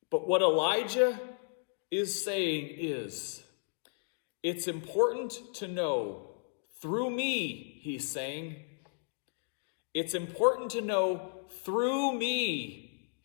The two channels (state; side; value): silent; right; digital silence